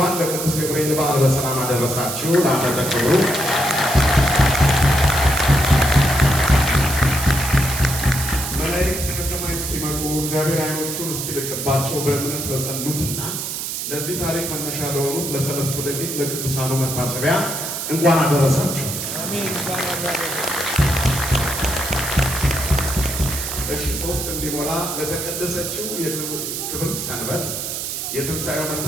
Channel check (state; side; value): noise; right; hiss, 4 dB below the sound